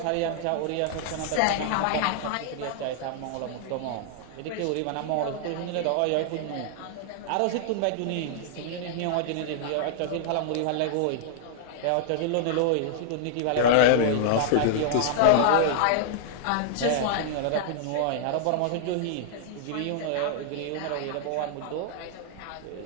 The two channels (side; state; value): both; different; correlation -0.01